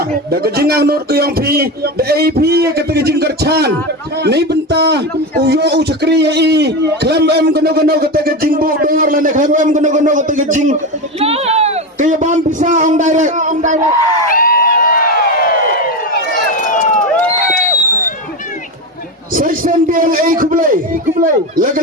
da kejingang not ke yang pi da AP kata kejing kercan ni benta uyo cekri i klam em gono kata kejing bu dor lane klam em gono kata kejing kaya bam bisa on direct Section BLA kublai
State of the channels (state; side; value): normal; both; correlation 0.17